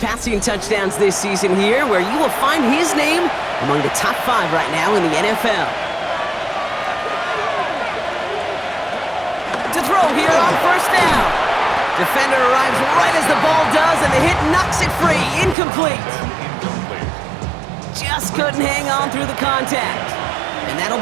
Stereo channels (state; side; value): drops out; left; at 15.6 s